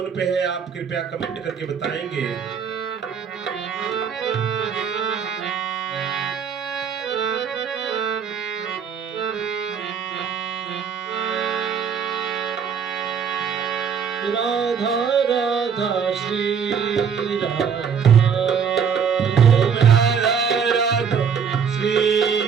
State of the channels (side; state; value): left; quieter; 6.8 dB